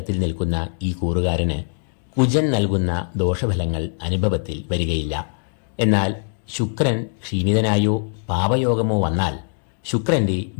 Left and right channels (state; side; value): silent; right; 64 dB below the other